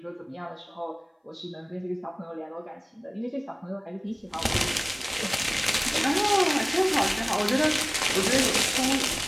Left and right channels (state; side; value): identical; both; correlation 1.00